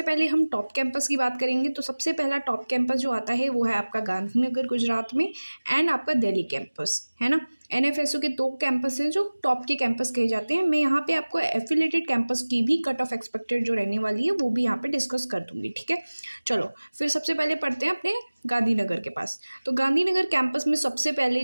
पहले हम टॉप कैंपस की बात करेंगे। तो सबसे पहला टॉप कैंपस जो आता है वो है आपका गांधीनगर गुजरात में, एंड आपका दिल्ली कैंपस है ना। एनएफएसयू के दो कैंपस हैं जो टॉप के कैंपस कहे जाते हैं। मैं यहाँ पे आपको एफिलेटेड कैंपस की भी कट ऑफ एक्सपेक्टेड जो रहने वाली है वो भी यहाँ पे डिस्कस कर दूंगी। ठीक है, चलो फिर सबसे पहले पढ़ते हैं अपने गांधीनगर के पास। तो गांधीनगर कैंपस में सबसे पहले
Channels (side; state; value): both; inverted; correlation -1.00